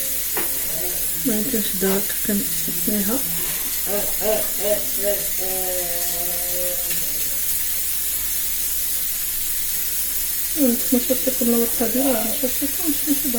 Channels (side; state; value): both; identical; correlation 1.00